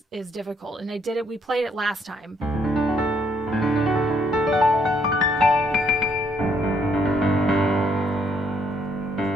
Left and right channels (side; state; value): both; normal; correlation 0.70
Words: is difficult. And we played it last time.